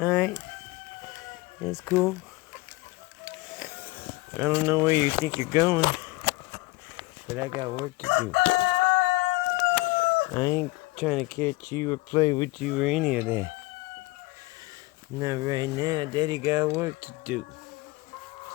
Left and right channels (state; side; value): quieter; right; 22.1 dB